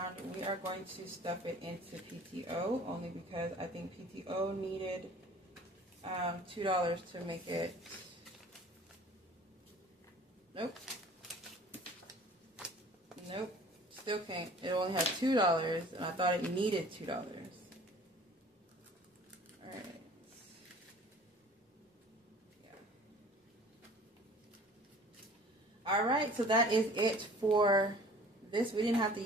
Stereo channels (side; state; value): both; normal; correlation 0.48